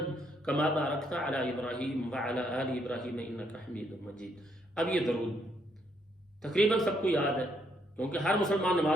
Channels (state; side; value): normal; both; correlation 0.73